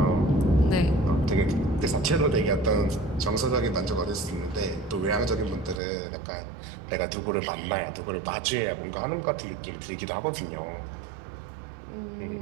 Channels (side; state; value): left; drops out; at 5.8 s